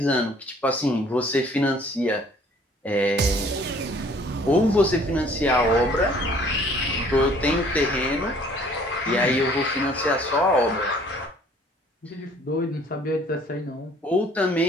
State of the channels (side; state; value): both; normal; correlation 0.56